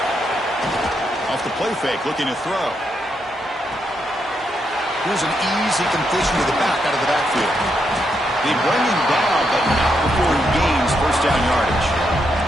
Play fake, looking to throw. Here's an easy completion to the back out of the backfield. They bring him down, but not before he gains first down yardage.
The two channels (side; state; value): both; normal; correlation 0.80